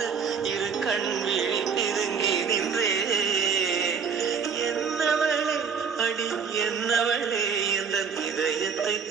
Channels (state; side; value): quieter; left; 6.1 dB